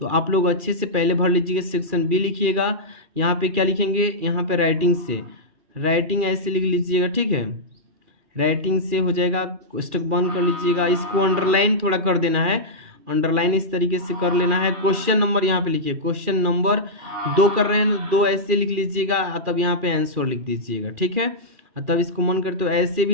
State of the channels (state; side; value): late; left; 2.4 ms